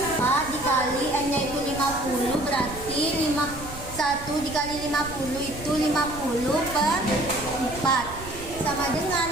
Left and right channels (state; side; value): noise; right; rumble, 14 dB below the sound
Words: dikali N-nya itu 50. Berarti 1 dikali 50 itu 50/4. Sama